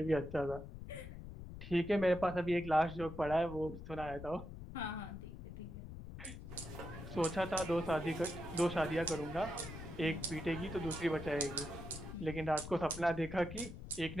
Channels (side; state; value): left; noise; rumble, 11 dB below the sound